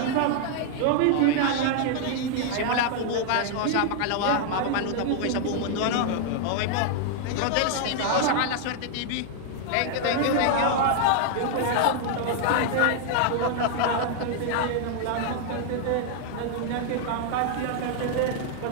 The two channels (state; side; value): different; both; correlation 0.00